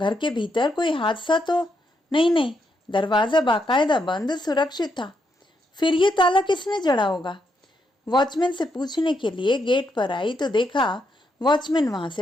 के भीतर कोई हादसा तो नहीं? दरवाजा बाकायदा बंद सुरक्षित था। फिर ये ताला किसने जड़ा होगा? वॉचमैन से पूछने के लिए गेट पर आई तो देखा वॉचमैन वहां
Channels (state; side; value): normal; both; correlation 0.79